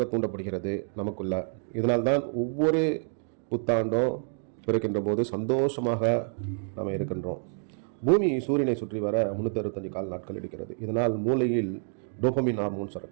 தூண்டப்படுகிறது நமக்குள்ள. இதனால்தான் ஒவ்வொரு புத்தாண்டும் பிறக்கின்ற போது சந்தோஷமாக நாம் இருக்கின்றோம். பூமி சூரியனை சுற்றி வர 365 கால நாட்கள் எடுக்கிறது. இதனால் மூளையில் டோபமின் ஹார்மோன்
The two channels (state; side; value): silent; left; 59 dB below the other